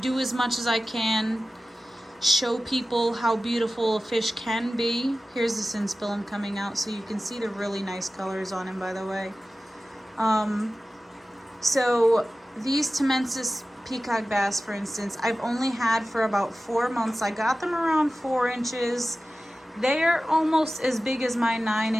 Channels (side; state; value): both; normal; correlation 0.95